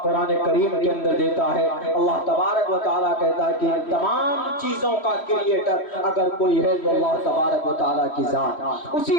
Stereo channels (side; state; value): right; late; 3.1 ms